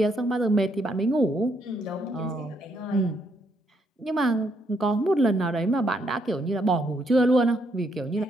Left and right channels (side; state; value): both; normal; correlation 0.74